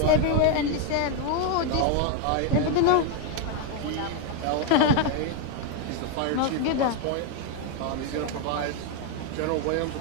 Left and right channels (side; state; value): both; different; correlation 0.01